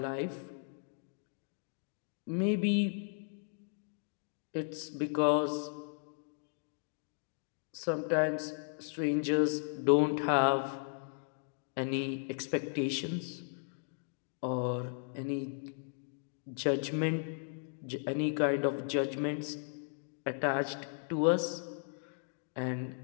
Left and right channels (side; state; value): right; silent; digital silence